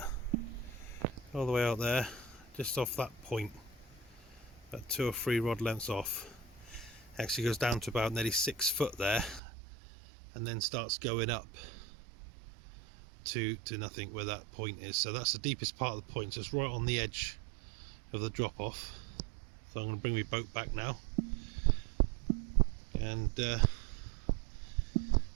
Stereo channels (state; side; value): drops out; left; at 9.4 s